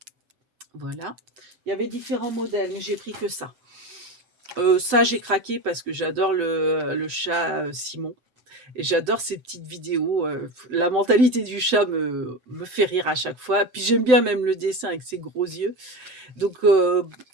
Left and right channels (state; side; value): late; left; 7.9 ms